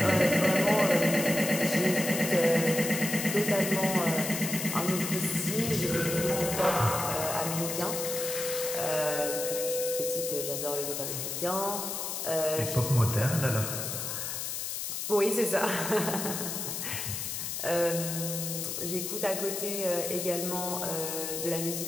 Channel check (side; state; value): left; noise; hiss, 4 dB below the sound